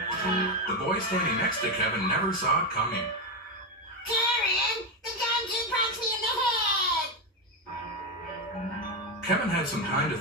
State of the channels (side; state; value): both; normal; correlation 0.09